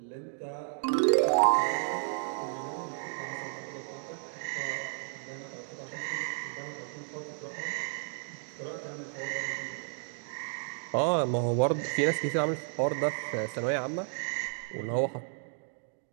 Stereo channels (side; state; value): left; silent; 56 dB below the other